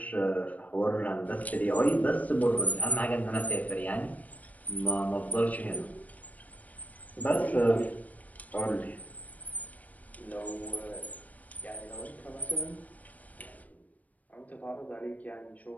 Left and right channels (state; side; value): late; right; 0.073 ms